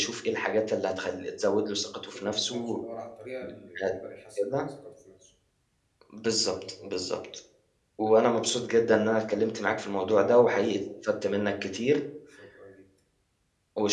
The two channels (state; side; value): identical; both; correlation 1.00